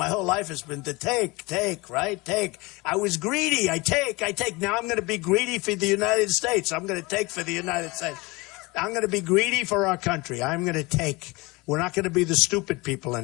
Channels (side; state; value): right; quieter; 24.2 dB